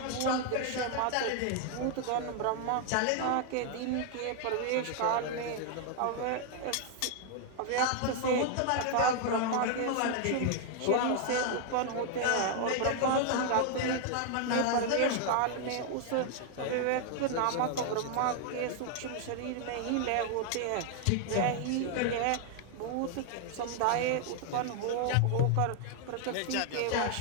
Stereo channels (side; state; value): both; different; correlation 0.00